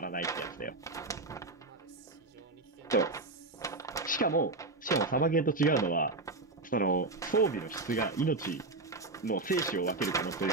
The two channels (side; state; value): left; quieter; 3.2 dB